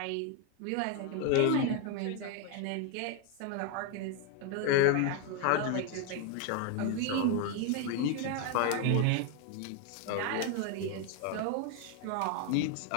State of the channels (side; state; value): both; different; correlation 0.01